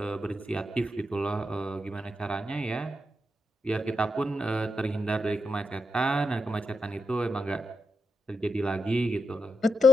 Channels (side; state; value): both; normal; correlation 0.85